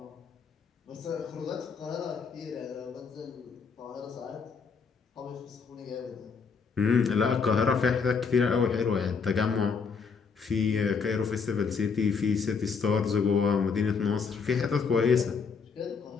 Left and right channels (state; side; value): quieter; right; 5.6 dB